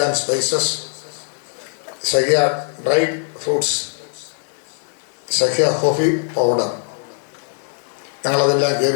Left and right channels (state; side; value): silent; right; digital silence